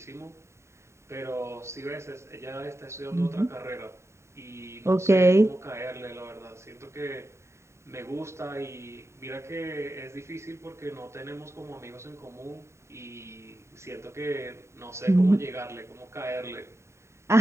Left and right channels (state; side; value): late; left; 0.13 ms